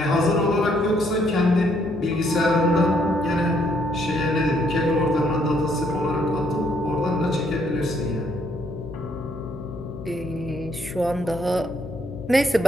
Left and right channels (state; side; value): noise; left; hum, 13 dB below the sound